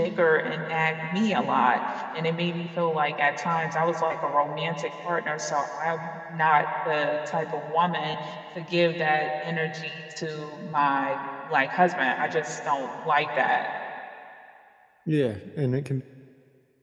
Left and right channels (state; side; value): identical; both; correlation 1.00